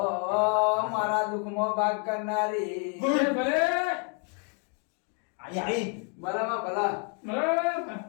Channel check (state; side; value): quieter; right; 38.6 dB